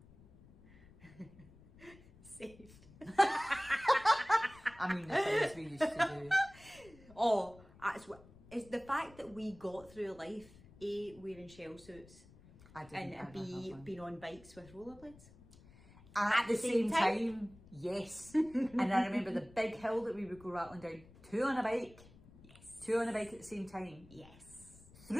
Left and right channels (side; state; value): left; noise; rumble, 23 dB below the sound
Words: Saved. I mean, the things we used to do. Oh, it's the fact that we got through life, A, wearing shell suits, I didn't. and B, being on bikes with rollerblades. At the same time, yes. And I remember the big hill that we would go rattling down. Two on a bike. Yes. Two on a bike at the same time. Yes.